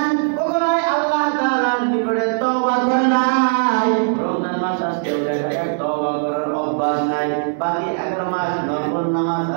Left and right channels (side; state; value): left; silent; 66 dB below the other